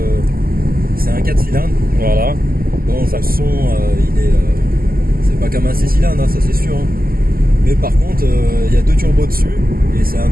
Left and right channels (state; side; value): late; left; 0.42 ms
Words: c'est un 4 cylindres. Voilà. Bon, le son, c'est pas comme un 6 cylindres, hein, ça c'est sûr. Hein. Mais par contre, il y a deux turbos dessus et c'est un 2,5